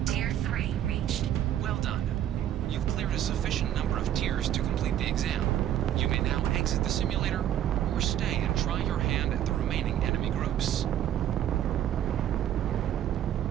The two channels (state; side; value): quieter; left; 11.2 dB